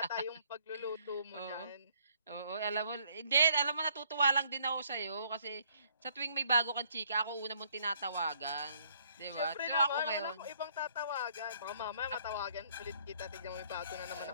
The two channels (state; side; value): inverted; both; correlation -0.65